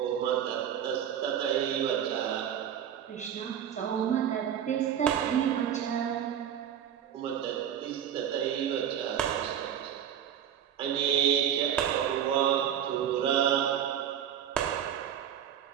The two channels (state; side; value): quieter; left; 9.5 dB